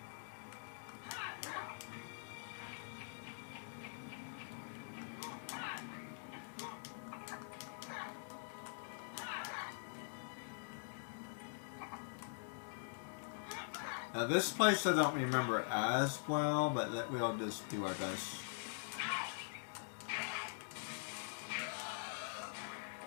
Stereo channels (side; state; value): right; silent; digital silence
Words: Now this place I don't remember as well, but we'll just do our best.